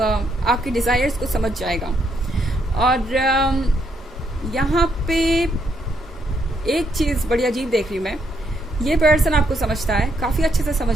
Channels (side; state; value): both; normal; correlation 0.75